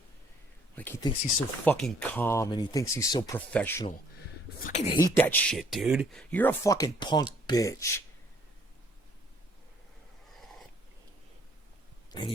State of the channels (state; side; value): normal; both; correlation 0.62